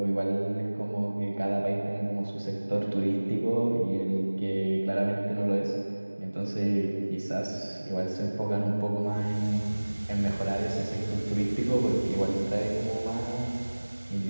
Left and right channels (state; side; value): inverted; both; correlation -1.00